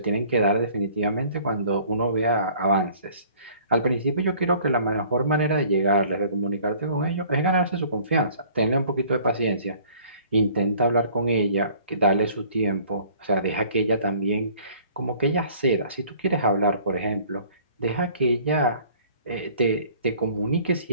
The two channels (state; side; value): inverted; both; correlation -0.53